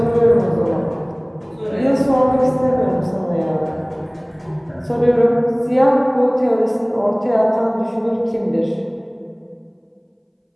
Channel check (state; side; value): identical; both; correlation 1.00